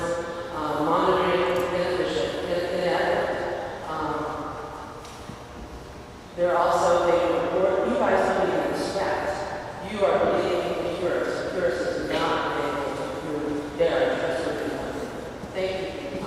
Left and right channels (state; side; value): identical; both; correlation 1.00